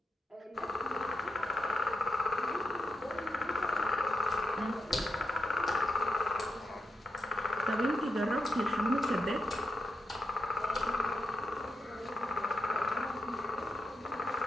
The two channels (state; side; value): normal; both; correlation 0.84